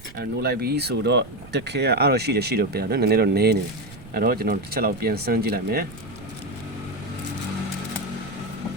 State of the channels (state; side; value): noise; right; rumble, 18 dB below the sound